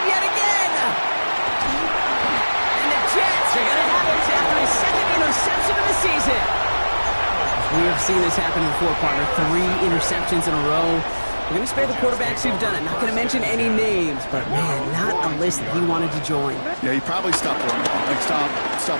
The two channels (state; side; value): inverted; both; correlation -1.00